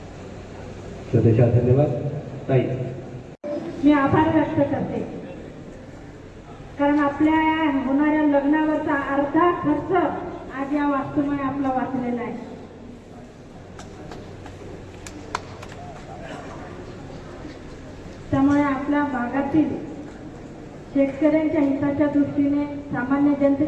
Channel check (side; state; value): both; identical; correlation 1.00